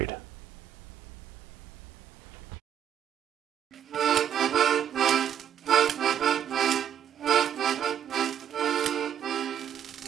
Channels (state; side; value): quieter; left; 9.5 dB